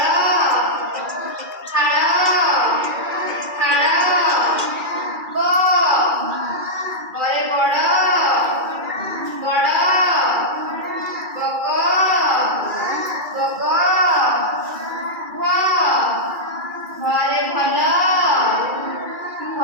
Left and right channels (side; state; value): left; late; 2.3 ms